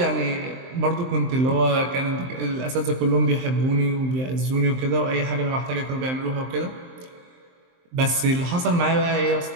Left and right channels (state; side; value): late; left; 23 ms